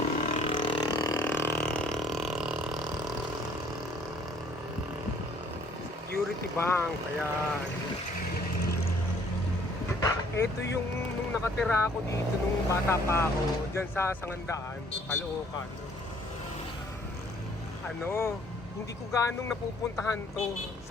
Security Bank, ayan. Ito yung nung nakatira ako dito nung bata pa ako, dyan sa Sangandaan, Caloocan. Hindi ko ganong napupuntahan to.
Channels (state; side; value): normal; both; correlation 0.60